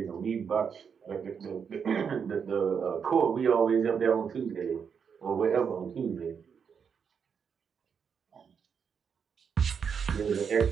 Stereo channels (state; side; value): quieter; left; 6.7 dB